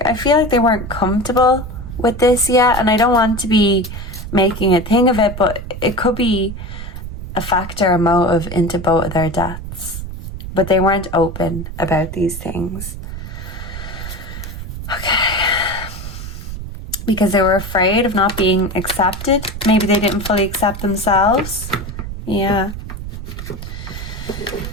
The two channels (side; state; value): right; noise; rumble, 9 dB below the sound